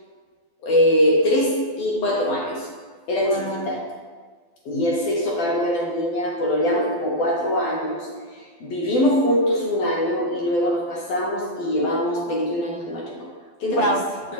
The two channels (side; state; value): right; late; 12 ms